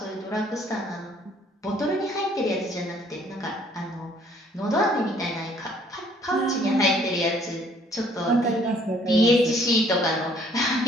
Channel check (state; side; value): normal; both; correlation 0.61